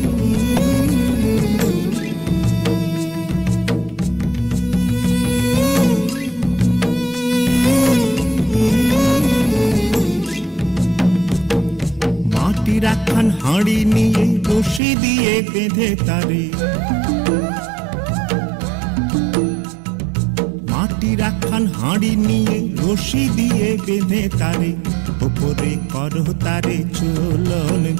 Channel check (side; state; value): left; drops out; at 14.8 s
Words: রাখান হাঁড়ি নিয়ে রশি দিয়ে বেঁধে তারে, মাটি রাখান হাঁড়ি নিয়ে রশি দিয়ে বেঁধে তারে, উপরে করো তারে ঝোলন